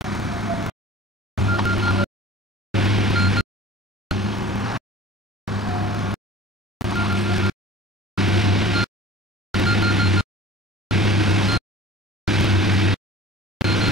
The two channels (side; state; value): both; normal; correlation 0.45